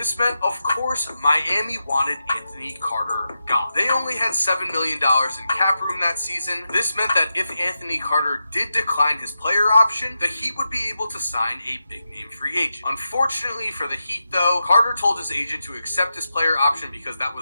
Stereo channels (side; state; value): both; inverted; correlation -0.88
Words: meant, of course, Miami wanted Anthony Carter gone. They only had $7 million in cap room that season. This meant that if Anthony Carter did decline his player option, the Heat would be able to sign a big-name free agent. Unfortunately, Unfortunately for the Heat, though, Carter told his agent to accept his player option because that